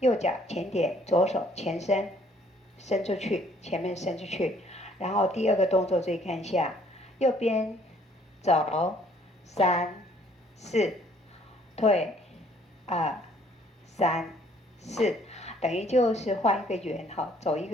脚前点，左手前伸，伸出去，前面伸出去。然后第2个动作注意看一下，右边走3、4，退2、3、4，等于就是画一个圆，好，走一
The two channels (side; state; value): both; normal; correlation 0.61